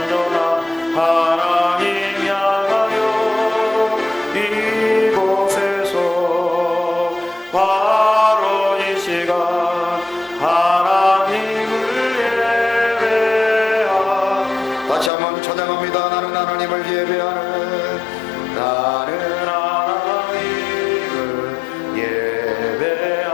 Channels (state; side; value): drops out; right; at 15.1 s